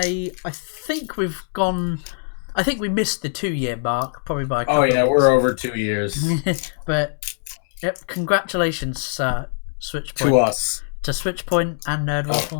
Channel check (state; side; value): silent; right; 64 dB below the other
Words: we missed the 2-year mark, probably by a couple of weeks. We're over 2 years. But, yep, congratulations, Switchpoint. To us. To Switchpoint and